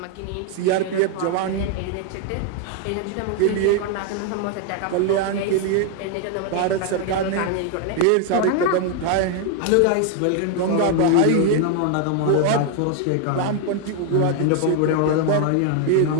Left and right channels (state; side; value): different; both; correlation 0.00